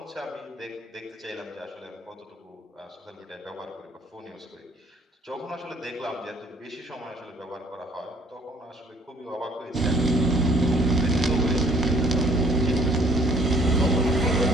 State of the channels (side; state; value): both; normal; correlation 0.59